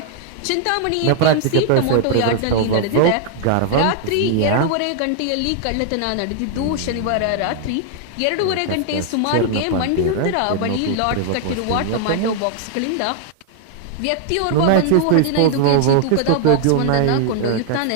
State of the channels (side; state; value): both; different; correlation 0.00